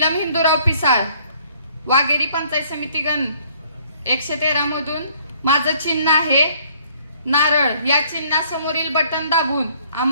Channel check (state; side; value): inverted; both; correlation -0.61